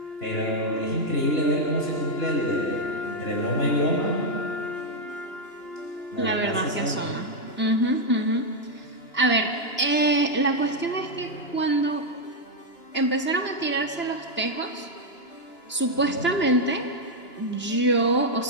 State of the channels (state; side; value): late; right; 2.9 ms